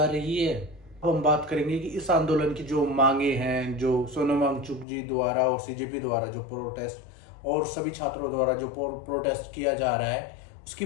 रही है? अब हम बात करेंगे कि इस आंदोलन की जो मांगे हैं, जो सोनम वांगचुक जी द्वारा और सीजेपी द्वारा जो प्रोटेस्ट और सभी छात्रों द्वारा जो प्रोटेस्ट किया जा रहा है, उसकी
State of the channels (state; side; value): drops out; right; at 4.9 s